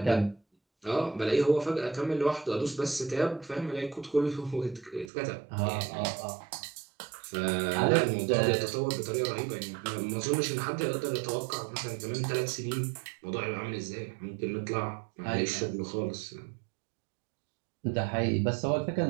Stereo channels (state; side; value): drops out; left; at 5.1 s